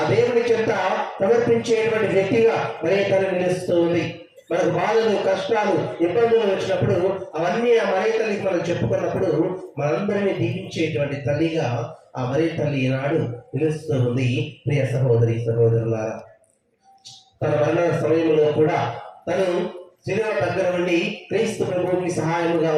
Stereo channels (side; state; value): both; identical; correlation 1.00